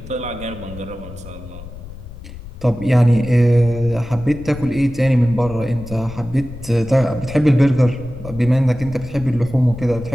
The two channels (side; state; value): left; noise; rumble, 15 dB below the sound